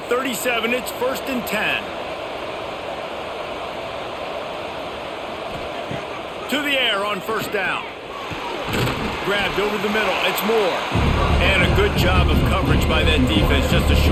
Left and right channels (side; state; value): both; identical; correlation 1.00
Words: 37. It's 1st and 10. To the air on 1st down. Grabbed over the middle. It's Moore. And a good job of coverage by that defense. Just a